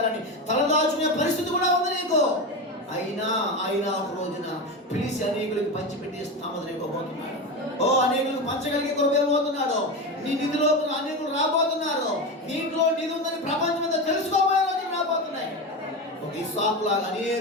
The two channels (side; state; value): both; normal; correlation 0.20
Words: తలదాచుకునే పరిస్థితి కూడా ఉంది నీకు. అయినా ఒక రోజున పిలిచి అనేకులకు పంచిపెట్టి స్థామని ఇవ్వబోతున్నాడు. ఓ అనేకులకు పంచగలిగే కృప ఇవ్వబోతున్నాడు. నీ నిధిలో అనేకులు రాబోతున్నారు. దీంట్లో నిధి ఉందని ప్రపంచం అంతా తెలుసుకోబోయే రోజులు రాబోతున్నాయి. ఒక ఇస్సాకు లాగా